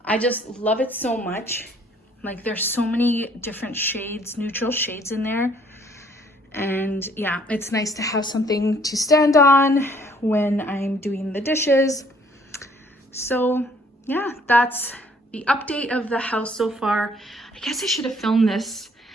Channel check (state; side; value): normal; both; correlation 0.61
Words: I just love it so much. Like, there's so many different shades, neutral shades in there. And yeah, it's nice to have something to stand on when I'm doing the dishes. So yeah, that's the update of the house so far. I guess I should have filmed this